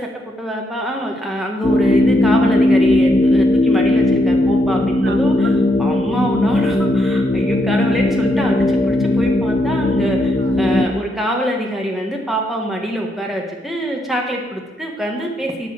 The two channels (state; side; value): normal; both; correlation 0.77